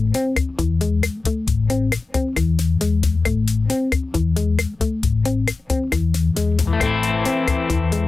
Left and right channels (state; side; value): quieter; right; 3.2 dB